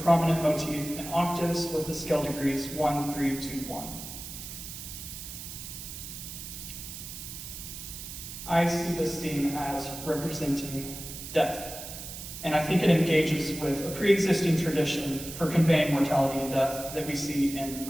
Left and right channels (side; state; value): right; noise; hiss, 10 dB below the sound